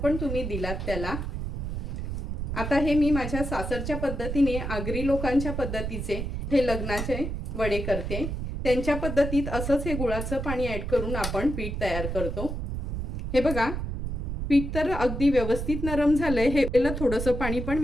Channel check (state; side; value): noise; right; rumble, 4 dB below the sound